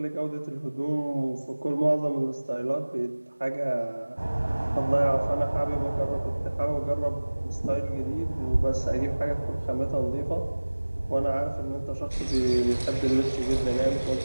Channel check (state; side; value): inverted; both; correlation -1.00